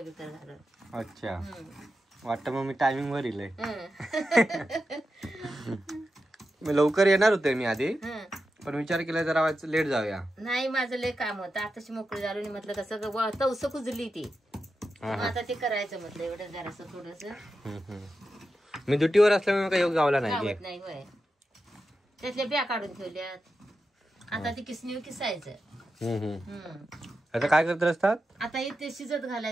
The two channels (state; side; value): normal; both; correlation 0.90